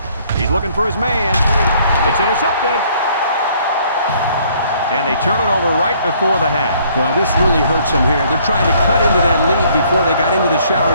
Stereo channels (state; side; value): inverted; both; correlation -0.62